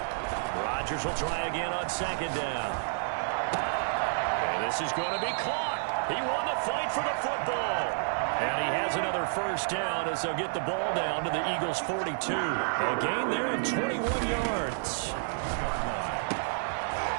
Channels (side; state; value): left; silent; 58 dB below the other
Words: Rodgers will try again on 2nd down. And this is going to be caught. He won the fight for the football. And he has another first down as they'll get the ball down to the Eagles' 42. A gain there of 21 yards.